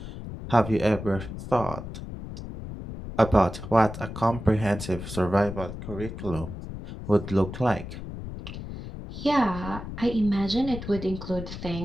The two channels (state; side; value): noise; left; rumble, 9 dB below the sound